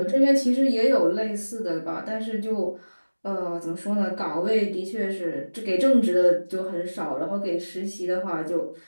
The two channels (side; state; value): both; inverted; correlation -1.00